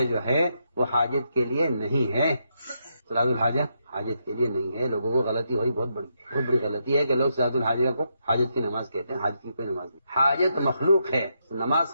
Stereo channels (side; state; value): both; inverted; correlation -0.80